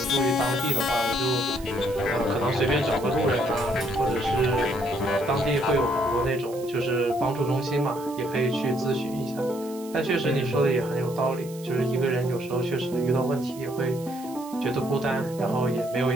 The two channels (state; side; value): noise; right; hiss, 19 dB below the sound